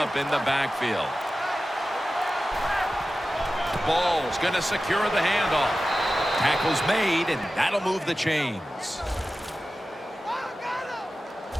in the backfield. Ball's going to secure the handoff. Tackle's made, and that'll move the chains.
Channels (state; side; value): normal; both; correlation 0.94